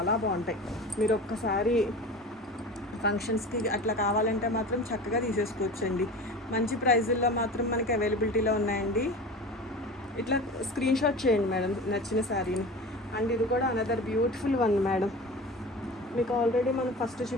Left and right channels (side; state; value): both; normal; correlation 0.34